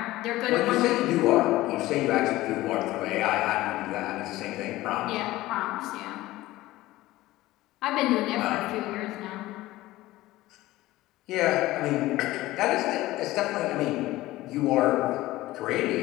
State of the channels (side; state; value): right; quieter; 17.4 dB